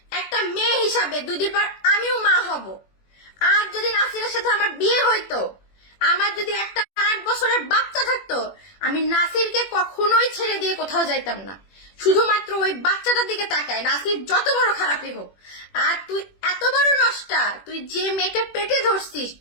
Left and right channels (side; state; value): right; late; 21 ms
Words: একটা মেয়ে হিসাবে। 2 দিন পর আমিও মা হব। আর যদি নাসিরের সাথে আমার বিয়ে হইতো, আমার যদি একটা 8 বছরের বাচ্চা থাকতো, আমি নাসিরকে কখনোই ছেড়ে দিয়ে কোথাও যাইতাম না, শুধুমাত্র ওই বাচ্চাটার দিকে তাকায়, নাসির যত বড় খারাপই হোক। আর তুই এত বড় নষ্টা, তুই যে মেয়েকে পেটে ধরছিস,